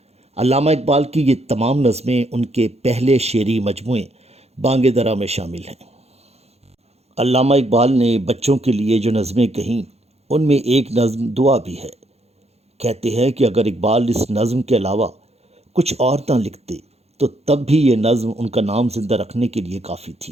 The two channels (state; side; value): late; left; 0.30 ms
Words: علامہ اقبال کی یہ تمام نظمیں ان کے پہلے شعری مجموعے بانگ درا میں شامل ہیں۔ علامہ اقبال نے بچوں کے لیے جو نظمیں کہیں ان میں ایک نظم دعا بھی ہے۔ کہتے ہیں کہ اگر اقبال اس نظم کے علاوہ کچھ اور نہ لکھتے تو تب بھی یہ نظم ان کا نام زندہ رکھنے کے لیے کافی